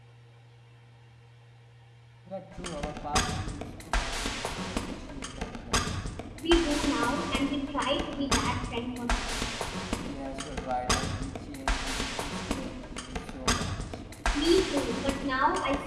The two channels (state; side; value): identical; both; correlation 1.00